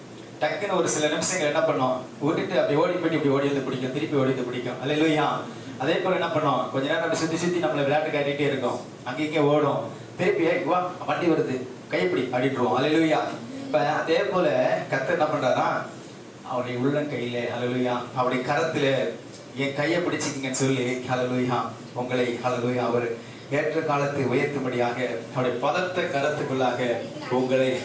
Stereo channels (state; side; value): identical; both; correlation 1.00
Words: டக்குன்னு ஒரு சில நிமிஷங்கள் என்ன பண்ணோம், விட்டுட்டு அப்படி ஓடி போயிட்டு இப்படி ஓடி வந்து பிடிக்கும், திருப்பி ஓடி வந்து பிடிக்கும். அல்லேலூயா. அதே போல என்ன பண்ணோம், கொஞ்ச நேரம் அப்படி சுத்தி நம்மளை விளையாட்டு காட்டிகிட்டே இருக்கோம். அங்கே ஓடும், திருப்பி வா வண்டி வருது கைப்பிடி அப்படின்றோம். அல்லேலூயா. இப்ப அதே போல கர்த்தர் என்ன பண்றாரா, அவருடைய உள்ளங்கையில, அல்லேலூயா, அவருடைய கரத்துல என் கையை பிடிச்சிக்கிங்கன்னு சொல்லி, அல்லேலூயா, உங்களை, அல்லேலூயா, அவர் ஏற்ற காலத்தை உயர்த்தும்படியாக அவருடைய பலத்த கரத்துக்குள்ளாக உங்களை